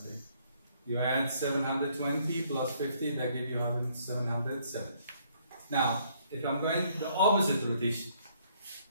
You add 720 plus 50, that gives you 770. Now, if I'm going the opposite rotation,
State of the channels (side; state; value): both; inverted; correlation -0.66